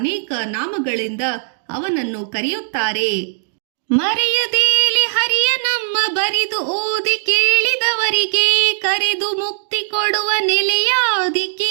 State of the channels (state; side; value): silent; left; digital silence